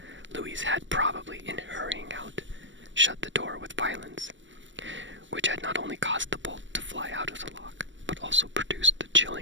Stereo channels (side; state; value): left; late; 0.55 ms